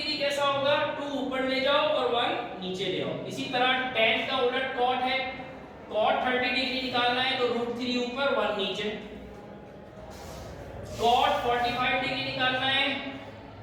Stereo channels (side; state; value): both; identical; correlation 1.00